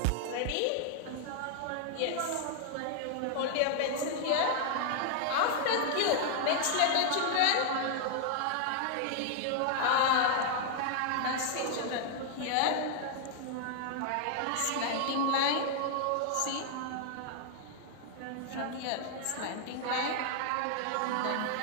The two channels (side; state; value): both; different; correlation 0.00